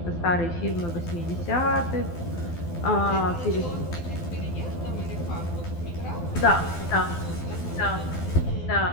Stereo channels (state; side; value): late; right; 12 ms